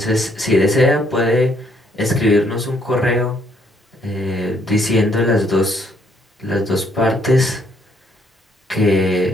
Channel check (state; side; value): normal; both; correlation 0.69